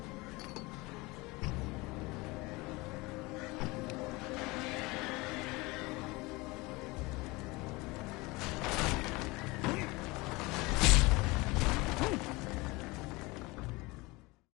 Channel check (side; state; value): right; quieter; 23.5 dB